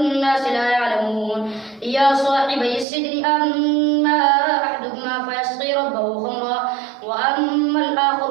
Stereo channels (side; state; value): left; drops out; at 2.9 s